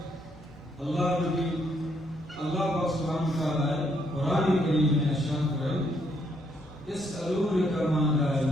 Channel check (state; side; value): normal; both; correlation 0.73